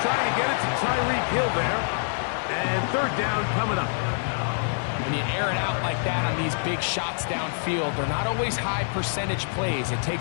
trying to get it to Tyreek Hill there. And 3rd down coming up. When you air it out like that on these big shots downfield, they're not always high percentage plays. It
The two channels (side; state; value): right; silent; digital silence